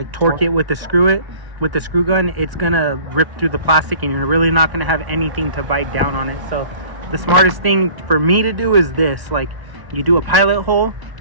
torque it with the screw gun, it's gonna rip through the plastic and you're really not gonna have anything to bite down on it. So the smartest thing for me to do is this: like, you do a pilot hole,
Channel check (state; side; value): late; left; 1.1 ms